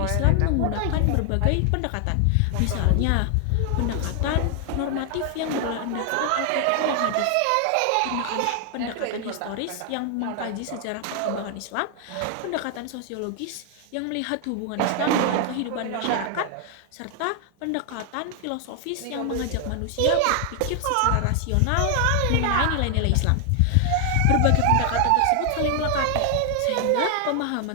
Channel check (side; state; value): both; different; correlation 0.00